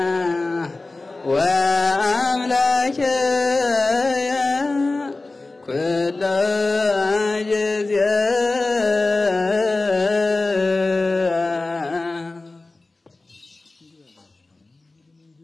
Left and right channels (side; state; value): right; quieter; 3.2 dB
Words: ወአምላክየ ኩሎ ጊዜ